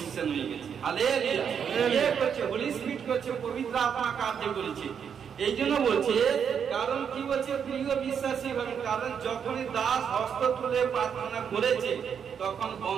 হয়ে গেছে। হালেলুয়া। করছে হোলি স্পিরিট করছে, পবিত্র আত্মা কার্য করেছে। এই জন্য বলছে, কারণ কি বলছে প্রিয় বিশ্বাসী ভাবে, কারণ যখনই দাস হস্ত তুলে প্রার্থনা করেছে তখন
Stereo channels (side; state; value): left; quieter; 7.5 dB